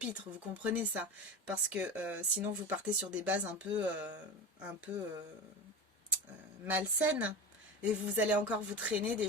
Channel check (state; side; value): normal; both; correlation 0.27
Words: Vous comprenez ça? Parce que sinon vous partez sur des bases un peu malsaines. Et vous allez encore vous traîner des